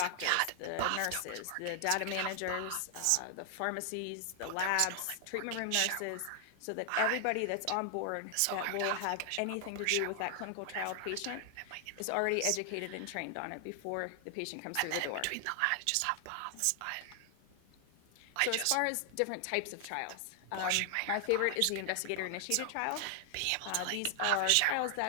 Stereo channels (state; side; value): different; both; correlation 0.00